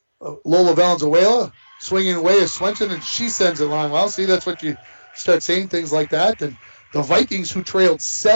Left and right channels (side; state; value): both; inverted; correlation -1.00